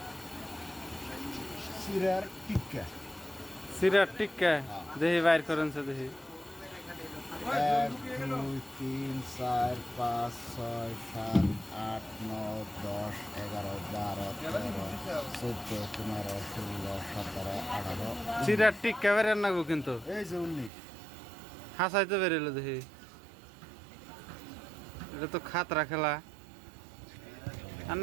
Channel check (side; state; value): left; drops out; at 20.7 s